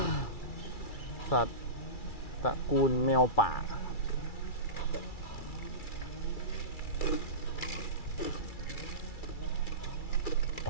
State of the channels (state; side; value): late; right; 2.3 ms